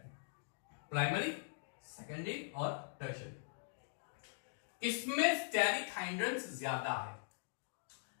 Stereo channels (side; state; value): right; silent; digital silence